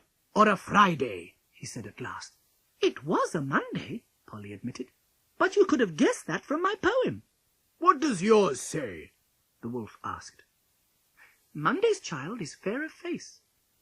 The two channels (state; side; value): identical; both; correlation 1.00